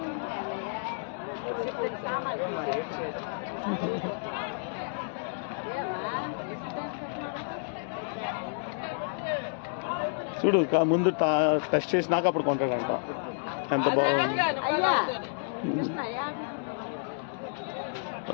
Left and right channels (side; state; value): right; silent; digital silence